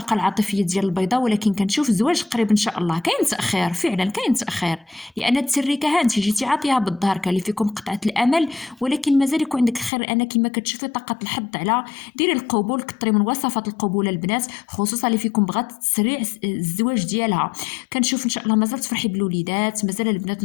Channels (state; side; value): drops out; right; at 9.9 s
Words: العاطفيه ديال البيضاء. ولكن كنشوف زواج قريب ان شاء الله. كاين تاخير فعلا، كاين تاخير، لان التريكه ها انت جيتي عاطيها بالظهر، كان اللي فيكم قطعه الامل، ولكن مازال يكون عندك خير. انا كما كتشوفي طاقه الحظ على ديري القبول، كثري من وصفات القبول البنات، خصوصا اللي فيكم بغات تسريع الزواج ديالها. كنشوف ان شاء الله مازال تفرحي بالوليدات، مازال البنات